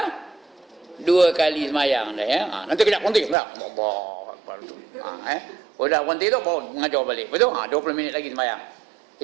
2 kali semayang dah ya. Nanti kejap berhenti. Udah berhenti tu, baru mengajar balik. Betul? 20 minit lagi semayang.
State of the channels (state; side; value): drops out; left; at 3.4 s